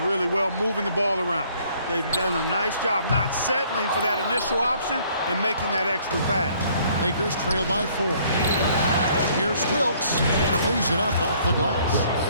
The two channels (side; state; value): both; inverted; correlation -0.61